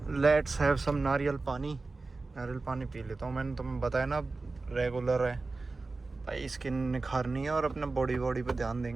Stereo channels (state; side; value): quieter; left; 3.6 dB